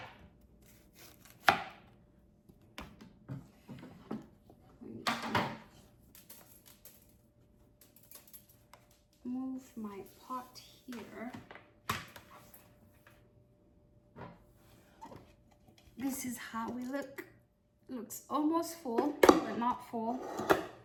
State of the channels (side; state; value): both; identical; correlation 1.00